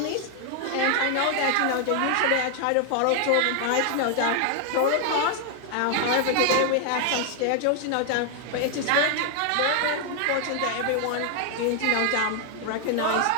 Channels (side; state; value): both; different; correlation 0.00